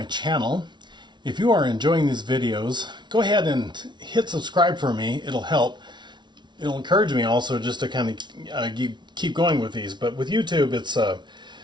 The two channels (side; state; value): left; late; 0.22 ms